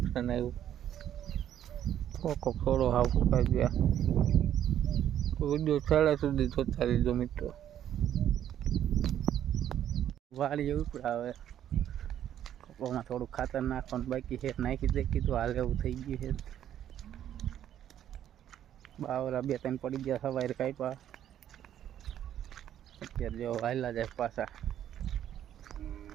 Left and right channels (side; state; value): left; quieter; 10.8 dB